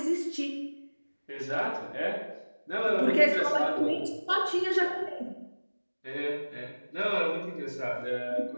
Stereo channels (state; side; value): inverted; both; correlation -1.00